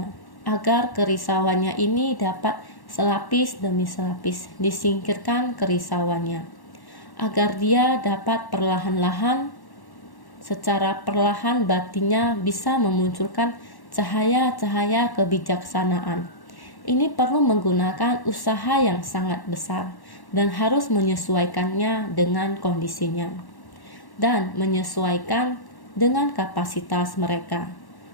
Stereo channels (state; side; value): late; right; 1.1 ms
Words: agar kerisauannya ini dapat selapis demi selapis disingkirkan kerisauannya, agar dia dapat perlahan-lahan, secara perlahan batinnya bisa memunculkan cahaya-cahaya kebijaksanaan. Ini perlu menggunakan usaha yang sangat besar dan harus menyesuaikannya dengan kondisinya dan menyesuaikan dengan kapasitas mereka.